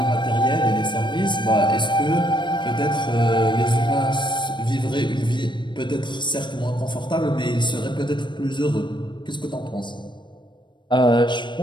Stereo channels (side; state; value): right; late; 0.22 ms